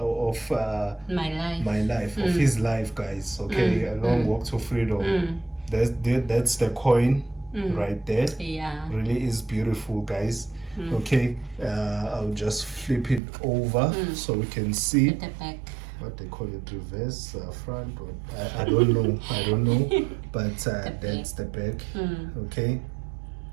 of his life, guys. Okay, a long walk to freedom. That's the coin right there. Yeah, really is beautiful, guys. Okay, I'll just flip it over so we can see at the back. What they call it, reverse, front, or I don't know, but that's the back. Okay,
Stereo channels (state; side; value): drops out; left; at 13.2 s